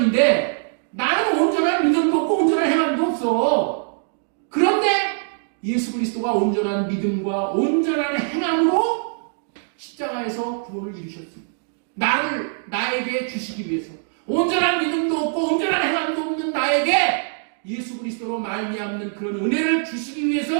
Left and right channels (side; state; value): left; silent; 64 dB below the other